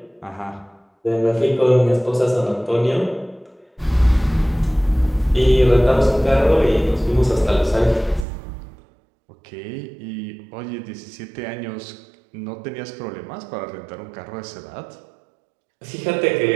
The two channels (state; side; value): drops out; left; at 8.2 s